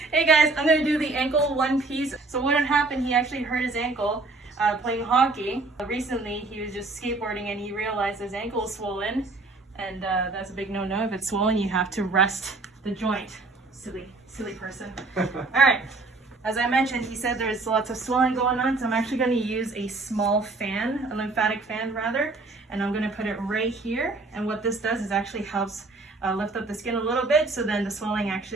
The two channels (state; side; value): quieter; left; 3.5 dB